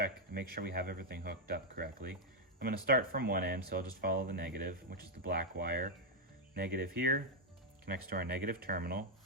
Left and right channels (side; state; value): both; normal; correlation -0.02